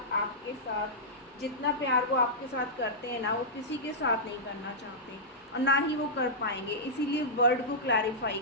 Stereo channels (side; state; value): both; normal; correlation -0.12